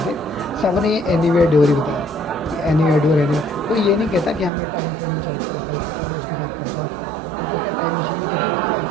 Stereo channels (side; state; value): left; drops out; at 4.5 s